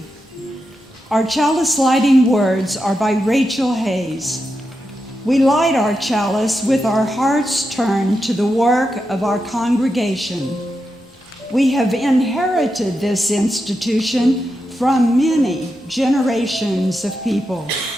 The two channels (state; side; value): normal; both; correlation 0.87